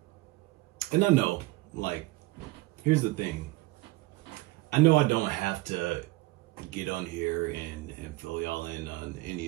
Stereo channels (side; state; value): left; quieter; 20.5 dB